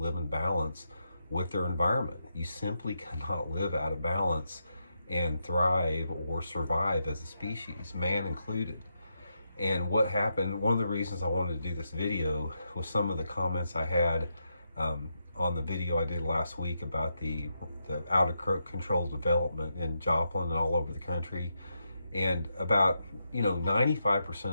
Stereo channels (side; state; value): both; inverted; correlation -0.83